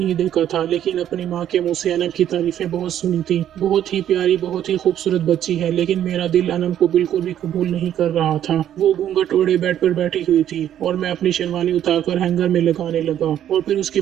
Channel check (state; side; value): quieter; left; 10.8 dB